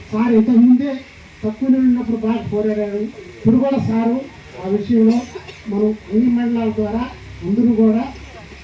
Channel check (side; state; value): both; identical; correlation 1.00